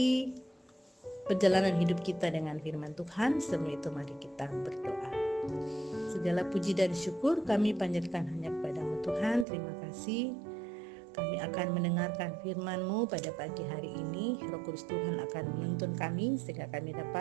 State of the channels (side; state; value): left; drops out; at 9.5 s